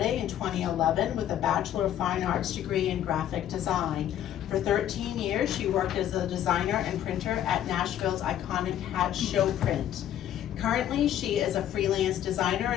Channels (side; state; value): right; quieter; 11.1 dB